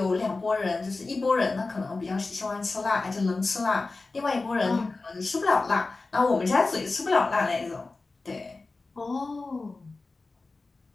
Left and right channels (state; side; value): quieter; right; 3.6 dB